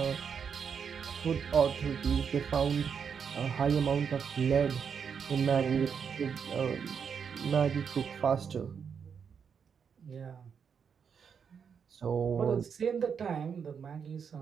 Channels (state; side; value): quieter; left; 6.8 dB